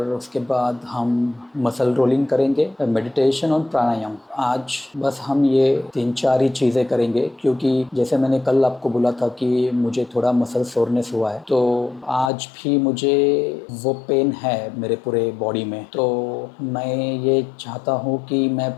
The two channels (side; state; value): right; drops out; at 12.3 s